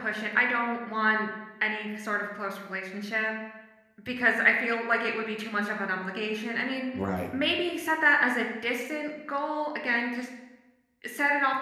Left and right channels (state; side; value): identical; both; correlation 1.00